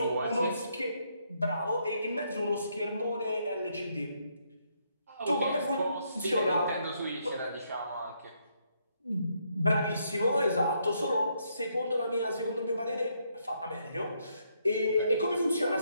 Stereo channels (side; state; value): both; inverted; correlation -0.75